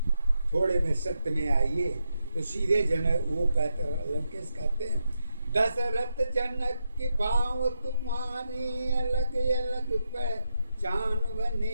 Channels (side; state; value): both; inverted; correlation -0.84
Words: थोड़े में सत्य में आइए तो सीधे जनक वो कहते लंकेश कहते हैं, दशरथ जनक की भाव तुम्हारी अलग अलग पहचान